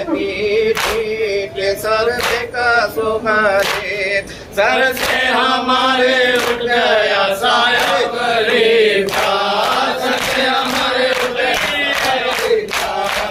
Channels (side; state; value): both; identical; correlation 1.00